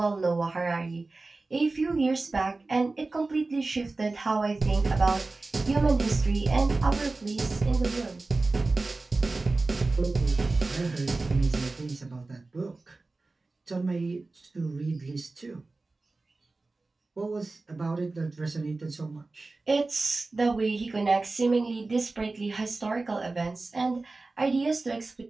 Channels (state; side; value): quieter; left; 3.4 dB